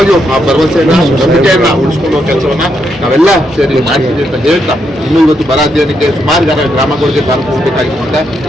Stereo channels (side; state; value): both; normal; correlation 0.79